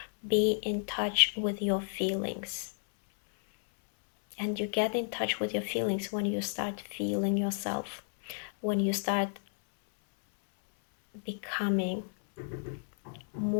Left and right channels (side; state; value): right; silent; 57 dB below the other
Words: be in touch with your feelings. And you get in touch with your feelings when you start feeling yourself, when you start becoming